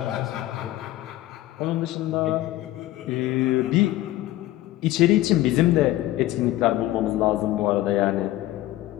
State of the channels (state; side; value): quieter; right; 15.7 dB